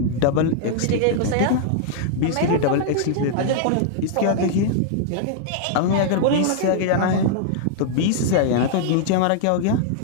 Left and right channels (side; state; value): both; different; correlation -0.01